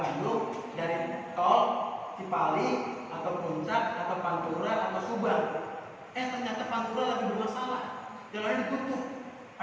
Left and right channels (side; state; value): both; identical; correlation 1.00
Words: dari tol Cipali atau Puncak atau Pantura atau Subang. Ternyata Pantura lagi bermasalah, jalannya ditutup,